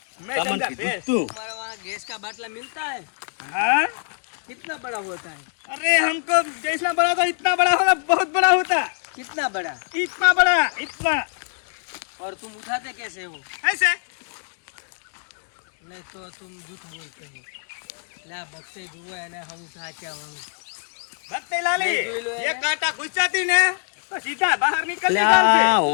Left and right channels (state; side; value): silent; right; digital silence